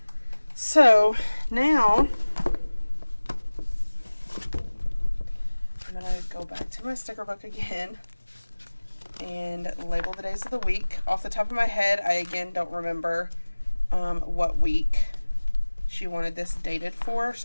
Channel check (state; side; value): inverted; both; correlation -1.00